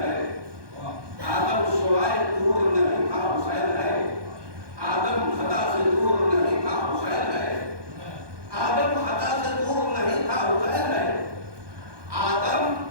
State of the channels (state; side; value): late; left; 1.2 ms